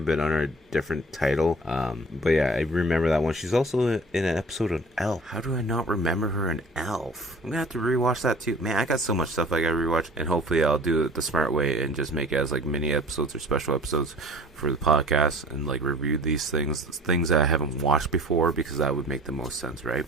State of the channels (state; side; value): normal; both; correlation 0.47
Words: been under a different title. But yeah, I remember that one. She's also in an episode of Elf. How do I not remember her in Elf? I'm gonna have to rewatch that too. Man, I got so much stuff I gotta rewatch, and hopefully I'll do it the smart way and just make it as like mini episodes or special episodes for the podcast, and like review these things that I haven't watched before, because that would make the most sense, right?